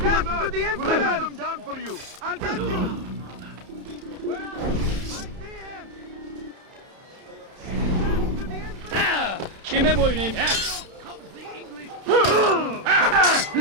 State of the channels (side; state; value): left; late; 31 ms